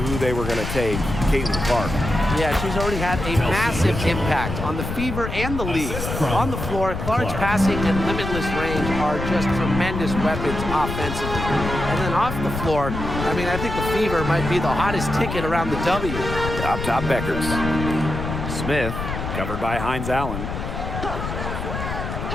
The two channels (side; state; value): left; noise; rumble, 5 dB below the sound